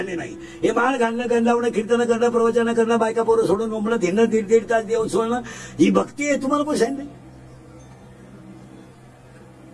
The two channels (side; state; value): both; identical; correlation 1.00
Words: नाही. हे माळ घालणं, गण लावणं, कीर्तन करणं, प्रवचन करणं, बायका पोरं सोडून मुंबईत हिंडणं, 1.5 तास देव सोडणं, ही भक्ती आहे. तुम्हाला कोण सांगितलं.